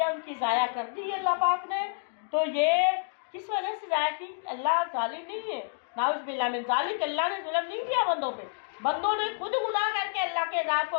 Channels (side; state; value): right; silent; digital silence